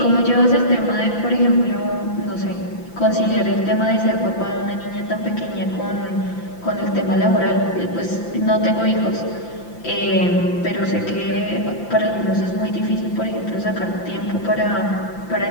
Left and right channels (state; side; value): late; right; 5.8 ms